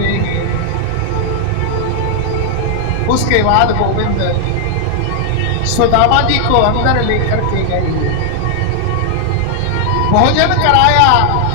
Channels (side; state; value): both; different; correlation 0.00